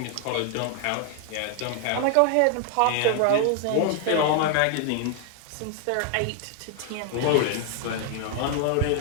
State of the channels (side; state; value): both; different; correlation 0.00